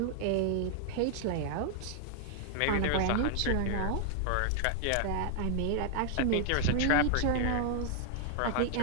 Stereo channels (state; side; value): different; both; correlation 0.00